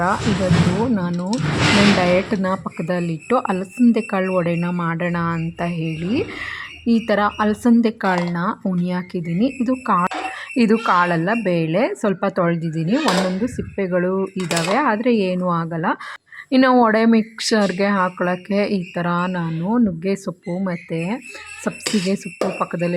ಇವತ್ತು ನಾನು ನನ್ನ ಡಯಟನ್ನ ಪಕ್ಕದಲ್ಲಿಟ್ಟು ಅಲಸಂದೆ ಕಾಳು ವಡೆನ ಮಾಡೋಣ ಅಂತ ಹೇಳಿ ಈ ಥರ ಅಲಸಂದೆ ಕಾಳನ್ನ ಉಣಿ ಹಾಕಿದ್ದೀನಿ. ಇದು ಕಾಳಲ್ಲ, ಬೇಳೆ. ಸ್ವಲ್ಪ ತೊಳೆದಿದ್ದೀನಿ. ಒಂದೊಂದು ಸಿಪ್ಪೆಗಳು ಇದ್ದಾವೆ, ಆದರೆ ಏನೂ ಆಗಲ್ಲ. ಇನ್ನು ವಡೆ ಮಿಕ್ಸರ್ಗೆ ಹಾಕೊಳ್ಳೋಕ್ಕೆ ಈ ಥರ ನಾನು ನುಗ್ಗೆ ಸೊಪ್ಪು ಮತ್ತು ಸಬ್ಬಸಿಗೆ ಸೊಪ್ಪು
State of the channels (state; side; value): identical; both; correlation 1.00